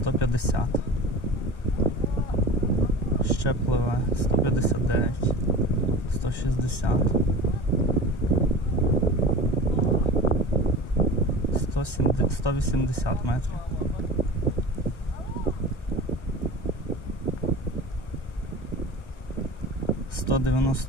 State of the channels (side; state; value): right; late; 1.0 ms